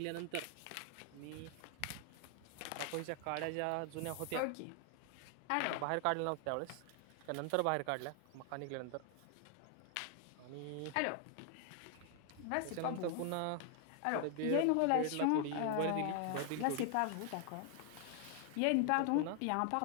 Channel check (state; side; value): different; both; correlation 0.00